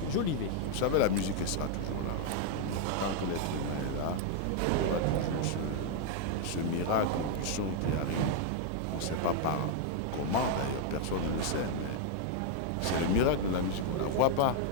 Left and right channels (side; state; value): both; different; correlation 0.00